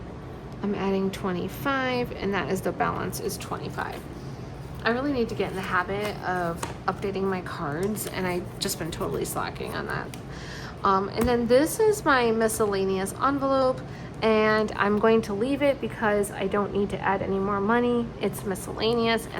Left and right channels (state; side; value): identical; both; correlation 1.00